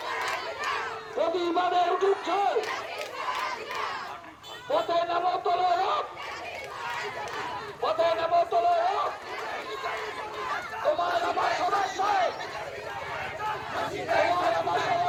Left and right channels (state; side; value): identical; both; correlation 1.00